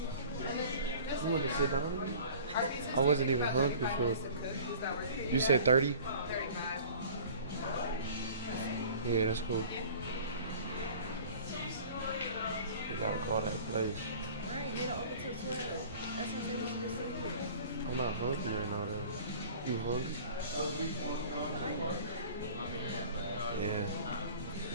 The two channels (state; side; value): inverted; both; correlation -0.44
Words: You want to sit down again? I wasn't even hungry for. You said 30? Yeah, that's cool. We gotta call that place. Right, they don't open till 12. That's why I said we should just sit here. I'm not hungry right now though. You hungry? Yeah.